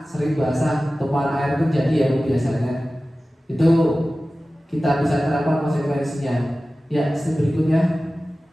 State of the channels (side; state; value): both; normal; correlation 0.96